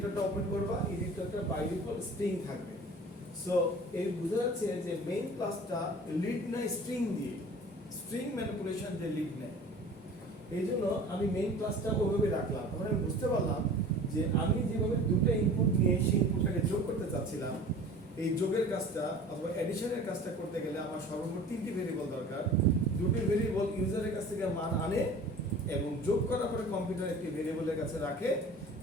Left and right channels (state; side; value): normal; both; correlation 0.42